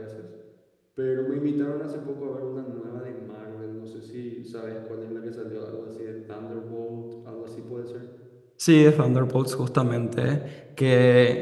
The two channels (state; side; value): identical; both; correlation 1.00